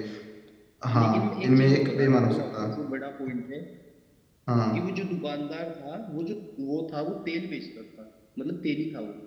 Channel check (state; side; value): identical; both; correlation 1.00